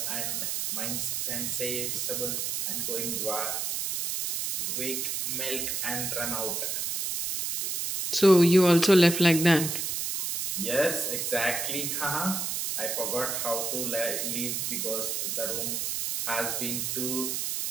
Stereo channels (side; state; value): right; noise; hiss, 1 dB below the sound